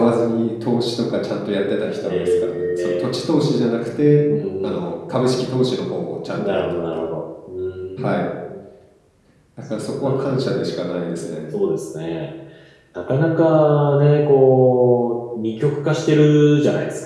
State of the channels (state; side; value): identical; both; correlation 1.00